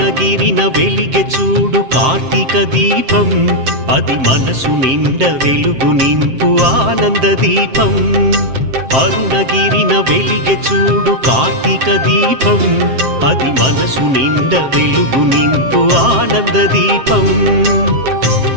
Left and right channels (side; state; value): left; late; 7.6 ms